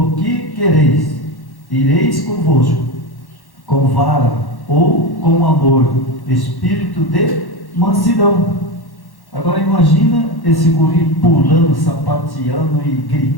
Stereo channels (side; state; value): right; late; 1.1 ms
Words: que quereis? Ireis convosco com vara ou com amor, espírito de mansidão. Agora imagina esse guri pulando, sapateando e